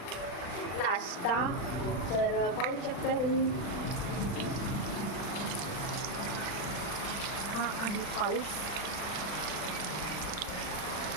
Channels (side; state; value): right; late; 40 ms